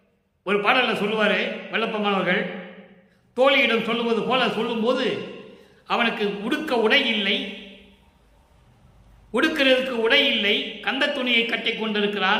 ஒரு பாடலில் சொல்லுவார் வெள்ளப்பமானவர்கள், தோழியிடம் சொல்லுவது போல சொல்லும்போது அவனுக்கு உடுக்கிறதுக்கு உடை இல்லை, கந்த துணியை கட்டி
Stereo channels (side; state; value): both; identical; correlation 1.00